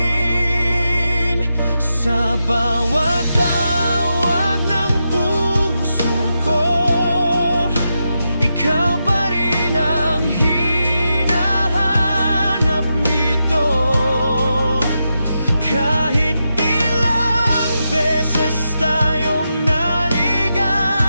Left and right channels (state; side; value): inverted; both; correlation -0.87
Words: Sa bawat tawag ng puso ko, ikaw pa rin ang hinahanap nito. Kahit ilang beses tayong